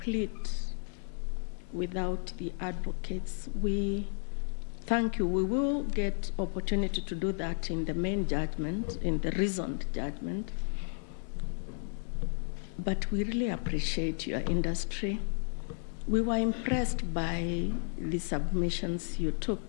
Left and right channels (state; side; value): silent; right; 56 dB below the other